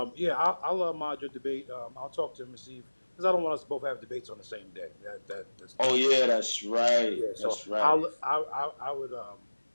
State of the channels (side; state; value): both; inverted; correlation -1.00